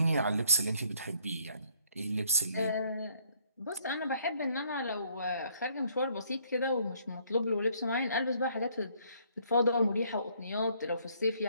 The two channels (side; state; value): both; inverted; correlation -0.64